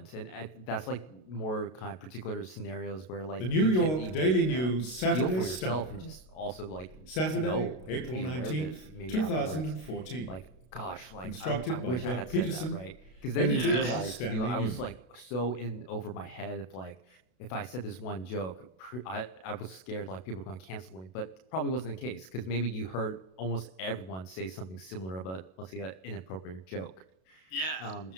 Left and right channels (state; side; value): late; right; 32 ms